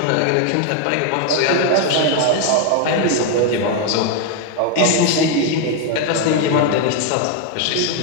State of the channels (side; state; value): both; different; correlation 0.01